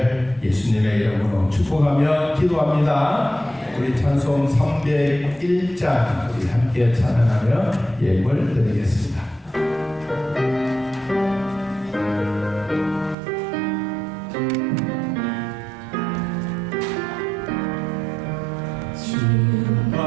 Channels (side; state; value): left; drops out; at 13.2 s